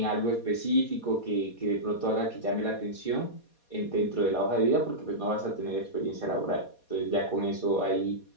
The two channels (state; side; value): late; right; 4.2 ms